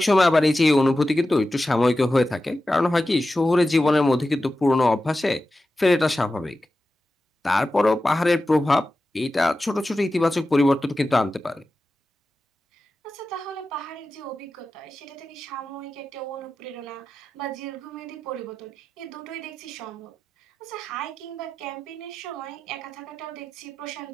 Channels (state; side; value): normal; both; correlation 0.93